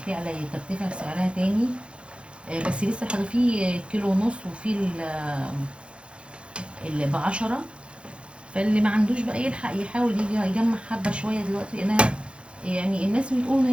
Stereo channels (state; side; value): late; left; 0.058 ms